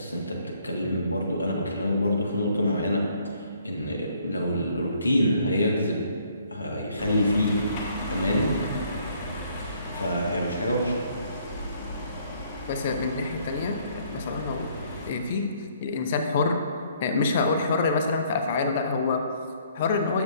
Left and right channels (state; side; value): inverted; both; correlation -0.64